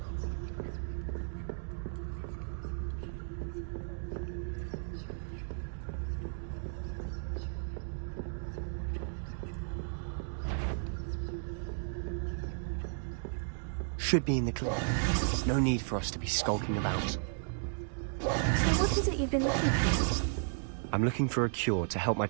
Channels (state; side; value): silent; left; digital silence